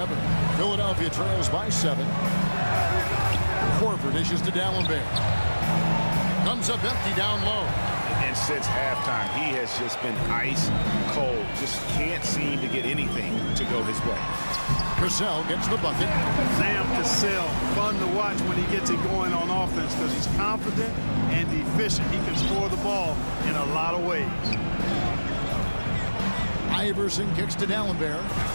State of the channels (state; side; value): inverted; both; correlation -1.00